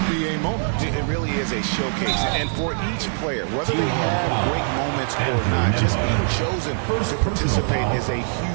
moment. It really is a showcase. And for each player, whether they have great moments or not, just being chosen to participate is a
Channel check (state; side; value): silent; left; digital silence